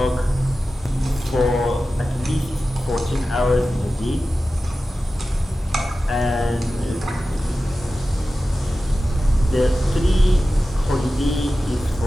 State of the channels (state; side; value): normal; both; correlation 0.94